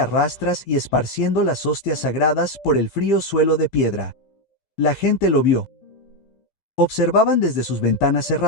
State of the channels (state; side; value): late; right; 15 ms